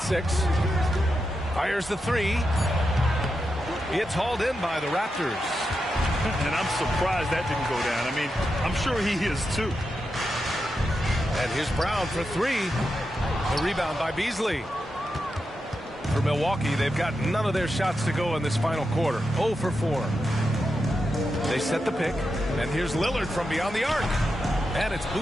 6. Fires the 3. It's hauled in by the Raptors. And I'm surprised that didn't go down. I mean, I'm sure he is too. And here's Brown for 3. The rebound by Beasley. For Milwaukee, they've got none of their shots to go in this final quarter. 0 for 4. They set the pick. And here's Lillard from beyond the arc. And it's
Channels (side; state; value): both; normal; correlation 0.88